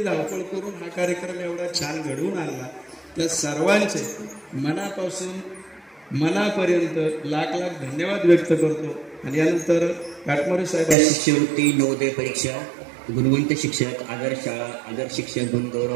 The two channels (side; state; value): left; drops out; at 11.0 s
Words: धावपळ करून हा कार्यक्रम एवढा छान घडवून आणला, त्या सर्वांचे मनापासून मनापर्यंत लाख लाख धन्यवाद व्यक्त करतो. आणि यानंतर काटमारे साहेब शिष्यवृत्ती नवोदय परीक्षा गुणवंत शिक्षक आदर्श शाळा आदर्श शिक्षक